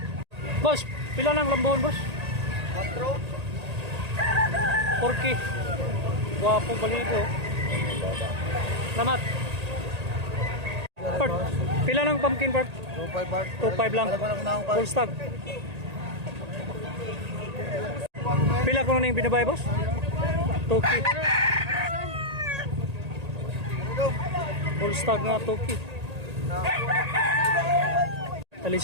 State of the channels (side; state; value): left; late; 1.8 ms